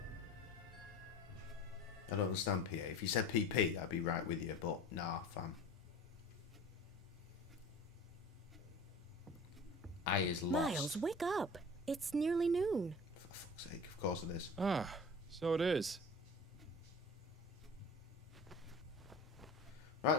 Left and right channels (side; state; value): both; normal; correlation 0.39